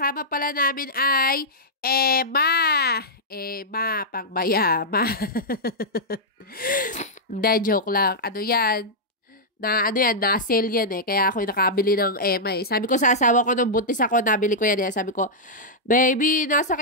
pala namin ay Emma, pangbayama. Hindi, joke lang. Ano yan? Na-sale yan eh. Kaya ako nakabili ng Emma eh. Sabi ko sa asawa ko nung buntis ako, nabili ko yan eh. Sabi ko, baby,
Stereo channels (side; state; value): both; normal; correlation -0.08